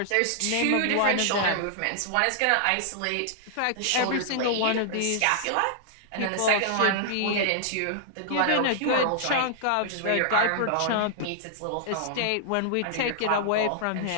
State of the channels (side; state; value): both; different; correlation -0.01